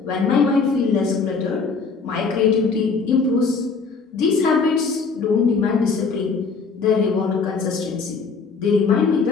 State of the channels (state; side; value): quieter; right; 4.8 dB